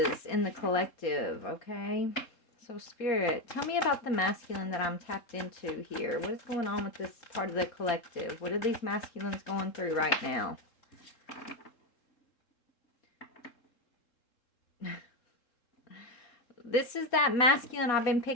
in the collective, okay? So, Spirit, tell me about the masculine that I'm tapped into here. What is going on with this part of the collective? What are these masculines going through right now? This is that masculine I've been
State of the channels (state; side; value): late; right; 3.7 ms